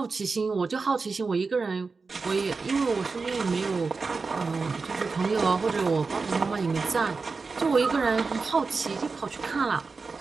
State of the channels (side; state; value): left; quieter; 4.4 dB